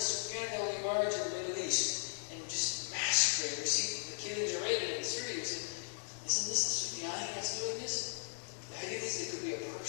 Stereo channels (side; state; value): right; silent; digital silence